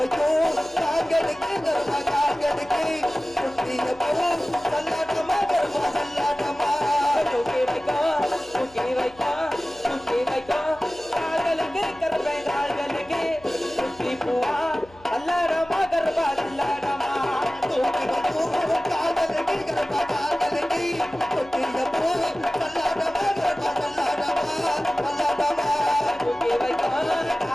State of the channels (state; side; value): noise; left; hum, 25 dB below the sound